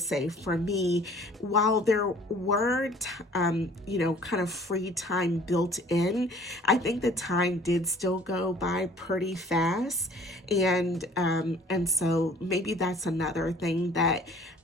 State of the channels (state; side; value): normal; both; correlation 0.52